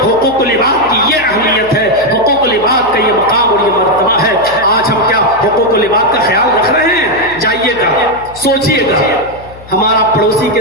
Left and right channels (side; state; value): left; noise; hum, 20 dB below the sound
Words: हुकूकुल इबाद की ये अहमियत है, हुकूकुल इबाद का ये मकाम और ये मर्तबा है। आज हम क्या हुकूकुल इबाद का ख्याल रख रहे हैं? जाइएगा, सोचिएगा, हमारा पड़ोसी के